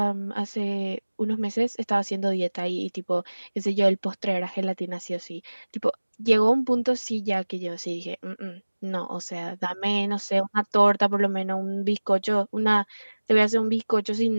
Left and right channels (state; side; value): inverted; both; correlation -1.00